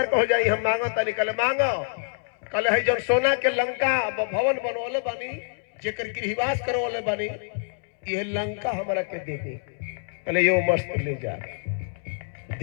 हो जाई, हम मांगो तनी। कहले मांगो। कहले है जौन सोना के लंका भवन बनवले बानी, जेकर गृहवास करवले बानी, ये लंका हमरा के दे दी। कहले यो मस्त ले जा,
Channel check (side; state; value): right; silent; 61 dB below the other